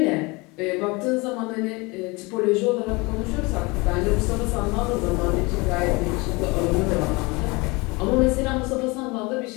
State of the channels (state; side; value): quieter; right; 25.5 dB